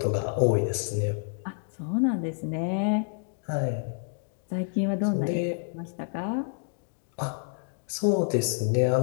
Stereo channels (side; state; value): right; silent; digital silence